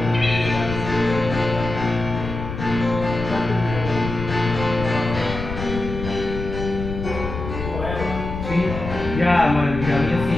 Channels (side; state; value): left; noise; rumble, 7 dB below the sound